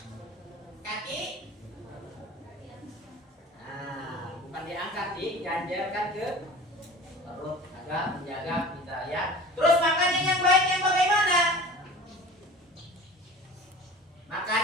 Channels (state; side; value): normal; both; correlation 0.39